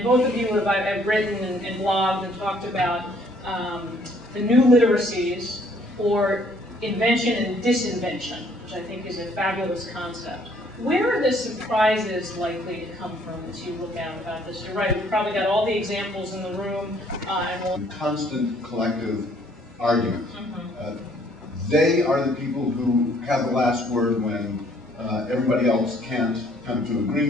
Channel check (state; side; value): normal; both; correlation 0.63